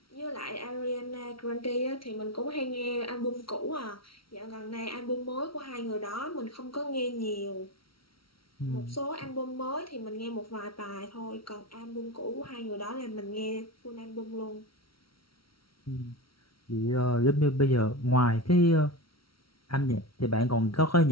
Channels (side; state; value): right; late; 0.75 ms